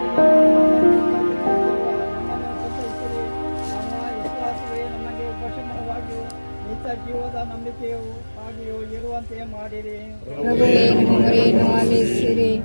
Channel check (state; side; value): inverted; both; correlation -1.00